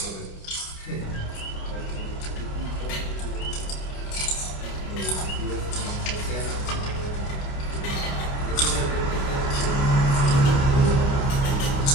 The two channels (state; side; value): late; right; 29 ms